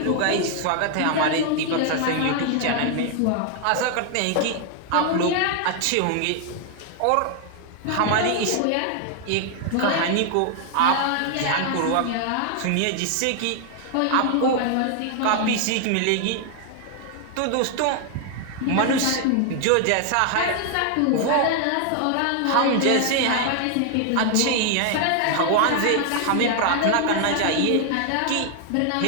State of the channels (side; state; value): both; different; correlation 0.00